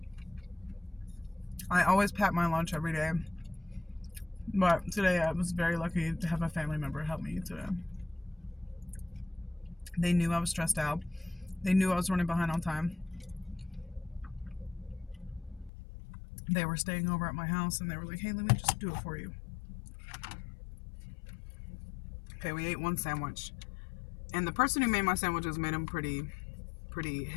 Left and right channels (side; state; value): right; drops out; at 15.7 s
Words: I always pack my lunch every day. But today I was very lucky to have a family member help me today. They knew I was stressed out. They knew I was running behind on time. They were staying over at my house and they were like, hey, let me just do it for you. Okay, we ate one sandwich. And the person who made my sandwiches made them pretty